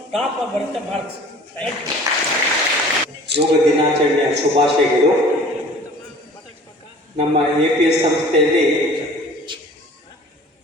ಟಾಪ್ ಆಗಿ ಬರುತ್ತೆ ಮಾರ್ಕ್ಸ್. Thank you. ಯೋಗ ದಿನಾಚರಣೆಯ ಶುಭಾಶಯಗಳು. ನಮ್ಮ APS ಸಂಸ್ಥೆಯಲ್ಲಿ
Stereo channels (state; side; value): normal; both; correlation 0.47